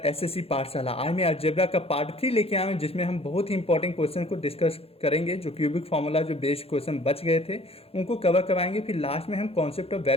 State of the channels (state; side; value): late; right; 0.28 ms